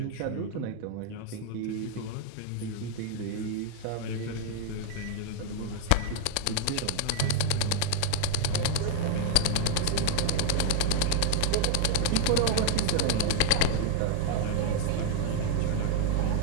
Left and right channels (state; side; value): different; both; correlation -0.01